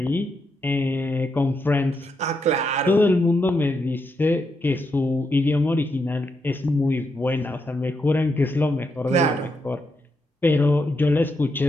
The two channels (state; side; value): normal; both; correlation 0.82